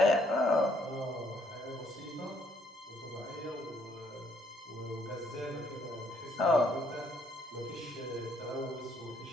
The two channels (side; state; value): both; normal; correlation 0.68